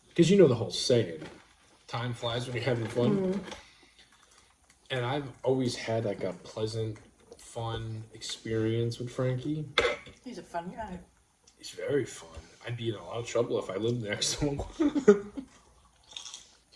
Because you know the whole saying, time flies when you're having fun. Mm-hmm. And I've always had like a pleasant, fun experience with Frankie. He's a fun guy. He's very fun. I'd be in a lot of trouble if I lived next to him.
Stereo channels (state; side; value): identical; both; correlation 1.00